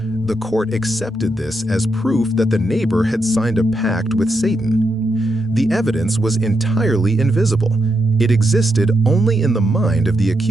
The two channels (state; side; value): normal; both; correlation 0.83